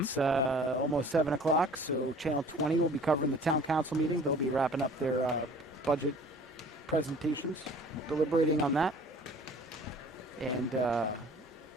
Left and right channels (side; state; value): both; normal; correlation 0.49